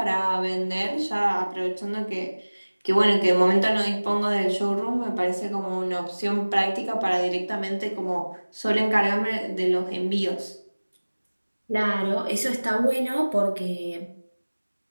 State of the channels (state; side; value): inverted; both; correlation -1.00